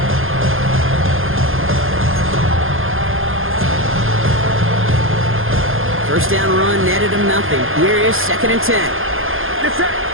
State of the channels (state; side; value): late; left; 0.60 ms